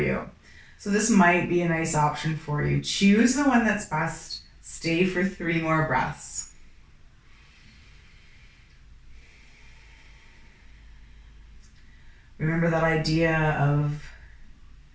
So this might be a nice option for you. Choose the one that's best. Stay for 3 more breaths. Remember that idea of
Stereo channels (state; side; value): identical; both; correlation 1.00